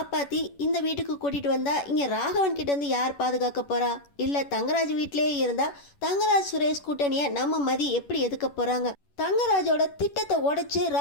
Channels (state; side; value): late; right; 11 ms